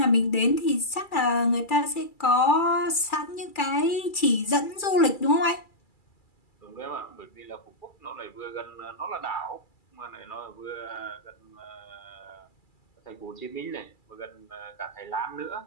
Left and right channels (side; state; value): right; late; 2.3 ms